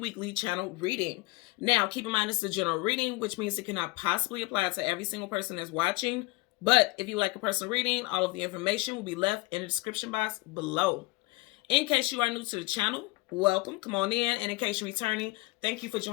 channel reading. Now keep in mind it's a general reading, which means it cannot possibly apply to every single person that's watching. But if you like a personal reading, all of the information will be left in the description box below. In case you are new to the channel, welcome, come on in. And in case you're returning, thank you for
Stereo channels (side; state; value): right; quieter; 22.7 dB